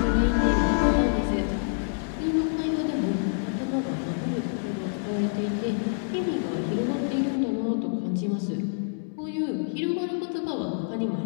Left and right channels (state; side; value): silent; right; digital silence